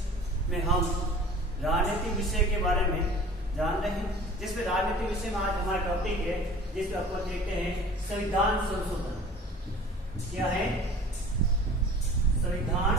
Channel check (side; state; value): both; normal; correlation 0.45